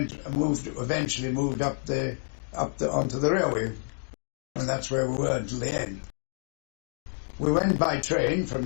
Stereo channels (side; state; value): right; silent; 59 dB below the other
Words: moved up onto the railway, and that's where we were until the end. We went by train